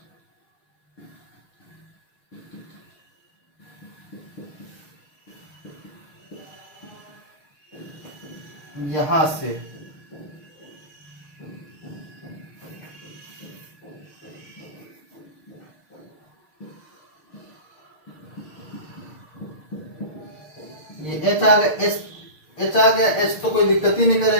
यहां से ये H आ गया, H आ गया, H तो कोई दिक्कत ही नहीं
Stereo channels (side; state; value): right; late; 6.4 ms